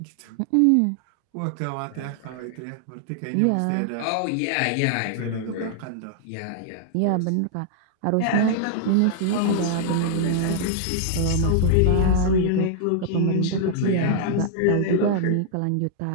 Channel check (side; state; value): both; different; correlation -0.01